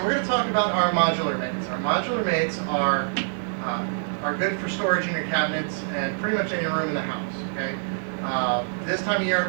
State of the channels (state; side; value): silent; left; digital silence